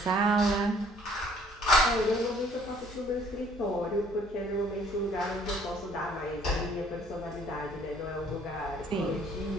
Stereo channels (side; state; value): both; normal; correlation 0.59